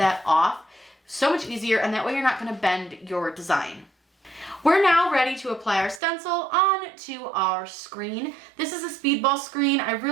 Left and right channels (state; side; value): drops out; left; at 6.0 s